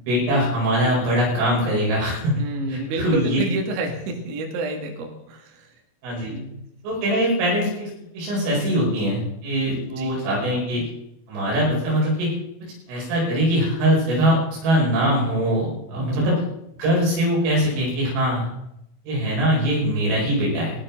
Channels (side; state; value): left; late; 24 ms